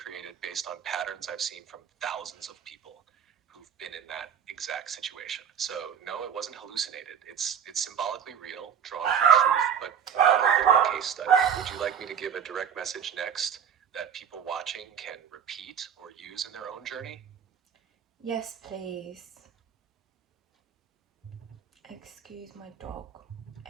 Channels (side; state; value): left; quieter; 8.0 dB